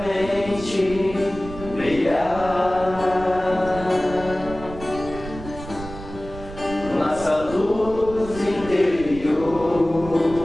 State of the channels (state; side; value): noise; right; rumble, 13 dB below the sound